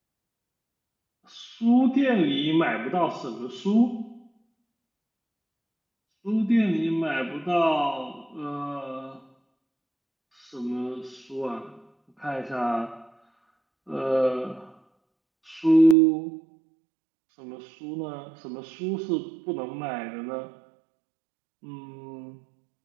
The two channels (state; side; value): drops out; left; at 16.0 s